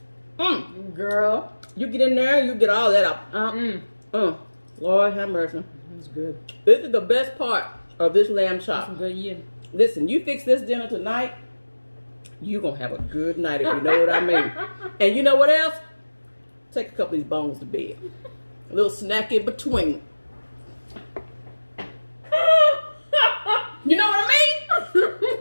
girl, you get in there, you get all that out. Lord have mercy. That's good. This is the best part of this lamb chop. That's good, yeah. Listen, you fix this dinner tonight, you gonna have a good night if you know what I mean. And you know what else? Take a couple of these bones to bed. A little snack in between. You know what I mean?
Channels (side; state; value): both; inverted; correlation -1.00